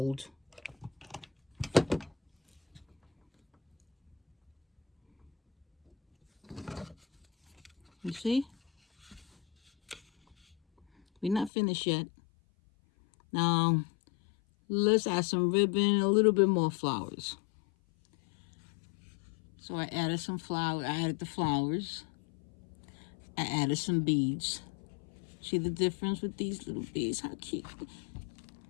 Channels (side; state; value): right; drops out; at 11.5 s